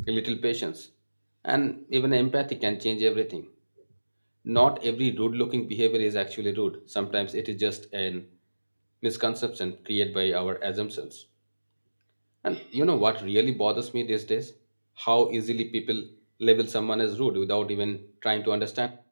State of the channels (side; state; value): both; inverted; correlation -1.00